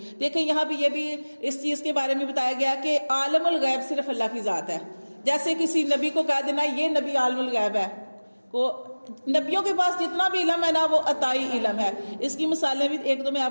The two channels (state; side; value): inverted; both; correlation -1.00